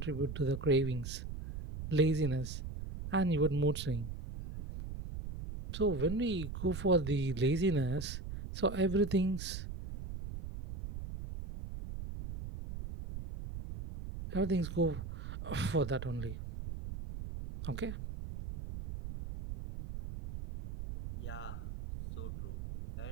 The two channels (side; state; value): right; noise; rumble, 8 dB below the sound